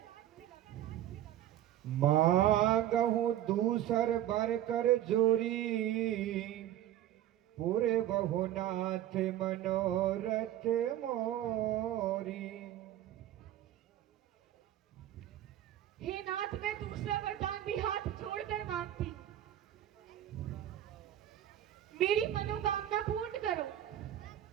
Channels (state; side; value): quieter; left; 12.4 dB